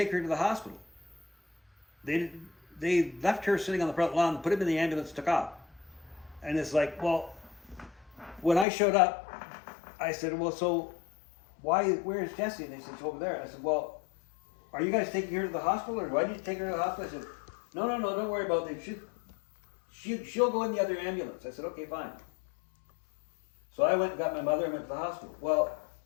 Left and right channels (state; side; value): drops out; right; at 8.7 s